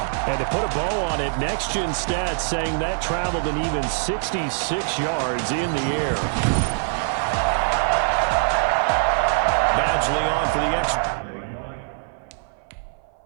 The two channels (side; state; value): left; silent; 56 dB below the other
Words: And to put a bow on it, Next Gen Stats saying that traveled an even 66 yards in the air. Badgley on for the extra.